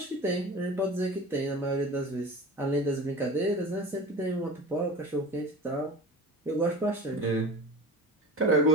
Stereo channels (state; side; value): normal; both; correlation 0.35